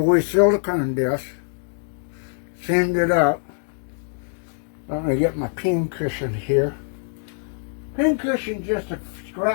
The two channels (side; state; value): right; silent; digital silence